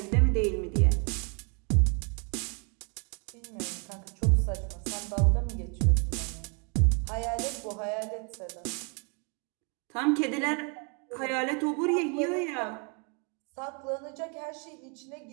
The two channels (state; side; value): quieter; left; 35.9 dB